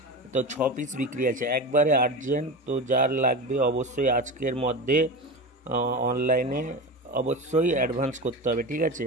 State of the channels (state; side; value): normal; both; correlation 0.25